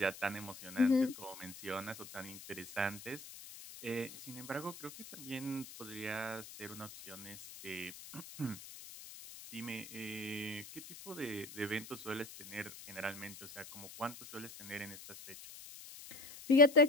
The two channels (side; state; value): left; noise; hiss, 14 dB below the sound